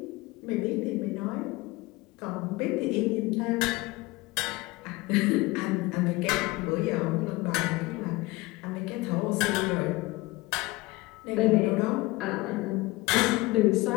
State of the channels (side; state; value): right; quieter; 21.5 dB